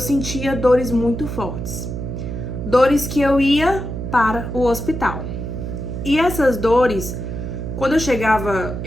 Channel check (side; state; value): right; noise; hum, 5 dB below the sound